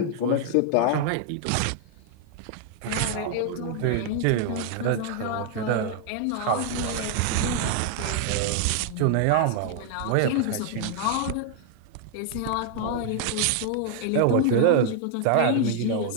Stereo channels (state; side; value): different; both; correlation 0.00